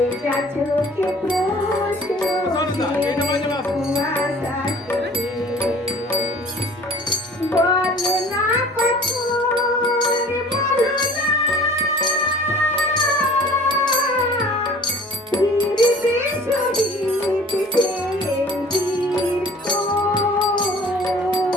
চোখে প্রশ্ন বলো না কখন বলো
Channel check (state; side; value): normal; both; correlation 0.47